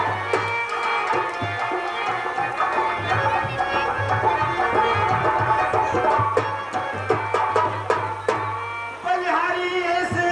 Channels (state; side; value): noise; right; hum, 28 dB below the sound